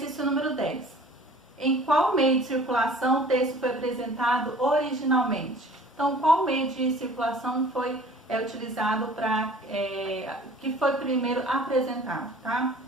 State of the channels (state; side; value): normal; both; correlation 0.48